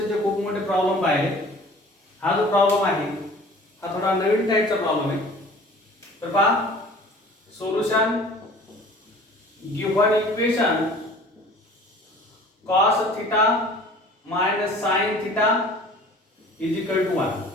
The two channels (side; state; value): both; normal; correlation 0.47